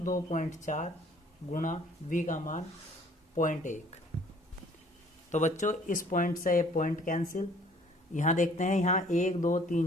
2.4 गुणा V का मान 0.1। तो बच्चों इस पॉइंट से ये पॉइंट कैंसिल। यहाँ देखते हैं, यहाँ 1 2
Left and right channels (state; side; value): normal; both; correlation 0.56